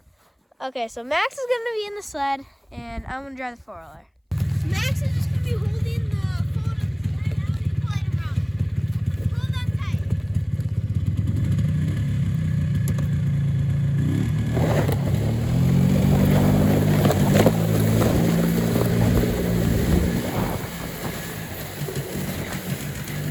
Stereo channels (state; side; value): identical; both; correlation 1.00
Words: so Max is gonna be in the sled, and I'm gonna drive the 4-wheeler. Max is just gonna be holding the phone on the sled. I'm gonna pull it around. Hold on tight.